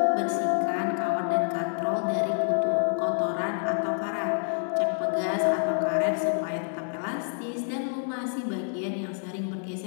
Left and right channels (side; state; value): right; silent; 57 dB below the other